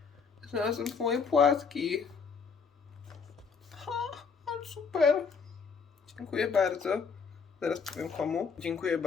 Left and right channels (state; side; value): quieter; right; 5.5 dB